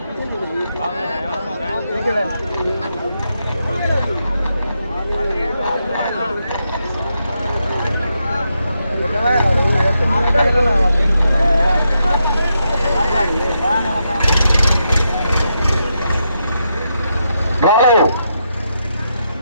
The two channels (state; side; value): inverted; both; correlation -0.83